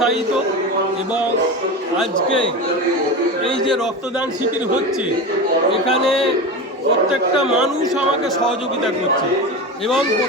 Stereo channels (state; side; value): normal; both; correlation 0.24